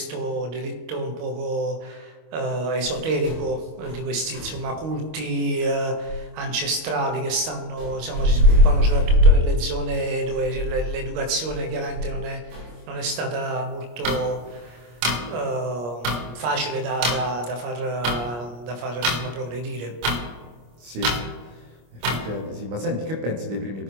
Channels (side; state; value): left; late; 25 ms